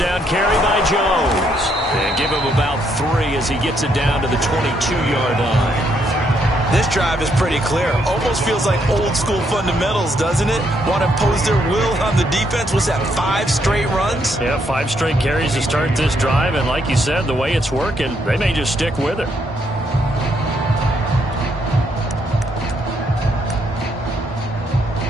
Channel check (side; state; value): both; normal; correlation 0.74